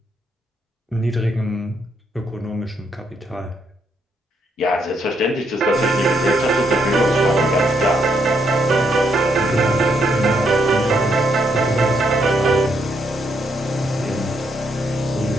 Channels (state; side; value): normal; both; correlation 0.75